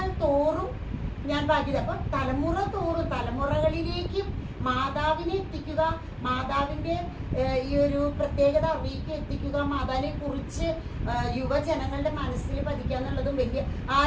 തോറും ഞാൻ ഭാഗ്യത. അപ്പൊ തലമുറ തോറും തലമുറകളിലേക്കും മാതാവിനെ എത്തിക്കുക, മാതാവിന്റെ ഈ ഒരു പ്രത്യേകത അറിയിക്കുക, എത്തിക്കുക, മാതാവിനെ കുറിച്ച് യുവജനങ്ങളുടെ മനസ്സിൽ പതിക്കുക എന്നുള്ളതും വലിയ,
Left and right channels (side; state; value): both; identical; correlation 1.00